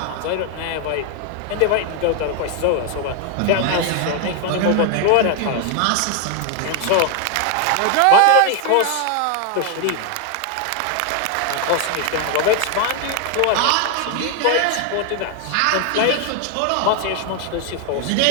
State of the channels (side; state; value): both; different; correlation 0.01